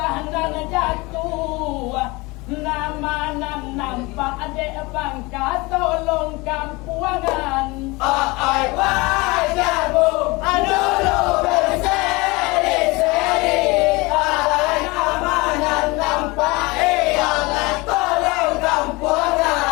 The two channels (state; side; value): quieter; right; 24.2 dB